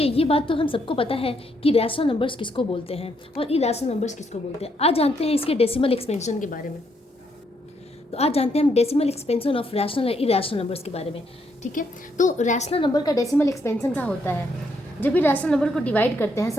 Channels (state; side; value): normal; both; correlation 0.75